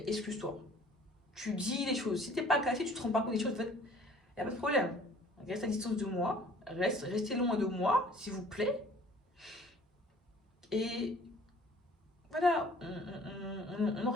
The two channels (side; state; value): both; normal; correlation 0.52